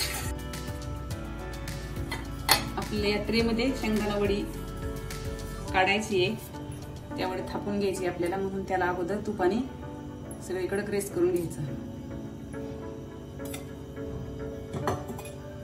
आपल्या या ट्रेमध्ये शेंगदाणा वडी काढायची आहे, त्यावर थापून घ्यायची आपल्याला, म्हणून त्याला अगोदर तुपाने सगळीकडे ग्रेस करून घ्यायचं।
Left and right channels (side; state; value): both; identical; correlation 1.00